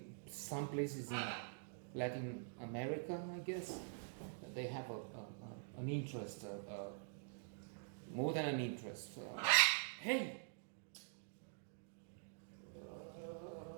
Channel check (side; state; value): left; silent; digital silence